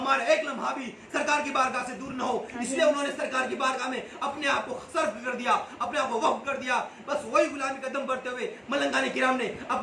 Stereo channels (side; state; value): both; identical; correlation 1.00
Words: एक लम्हा भी सरकार की बारगाह से दूर न हो। इसलिए उन्होंने सरकार की बारगाह में अपने आप को सर्फ कर दिया, अपने आप को वक्फ कर दिया। बस वही गुलामी कदम बढ़ते हुए मलंगाने किराम ने